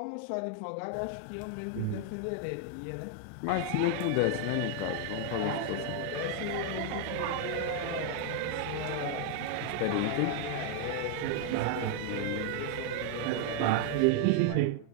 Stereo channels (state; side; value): different; both; correlation 0.00